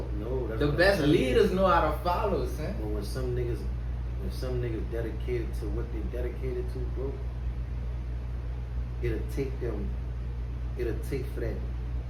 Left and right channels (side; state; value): both; identical; correlation 1.00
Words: No, that's The what I'm best telling you. leaders know how to follow, son. But when some niggas dedicated to what they dedicated to, bro, it'll take for that